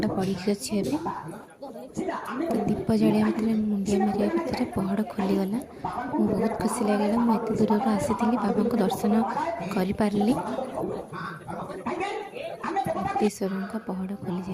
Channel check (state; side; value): identical; both; correlation 1.00